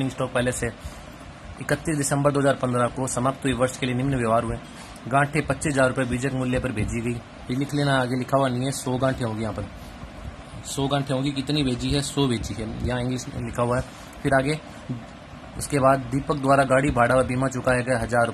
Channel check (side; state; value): both; identical; correlation 1.00